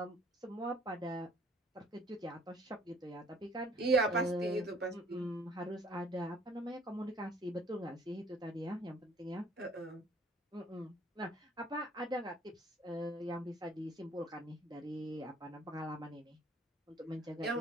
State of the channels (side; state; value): both; normal; correlation 0.57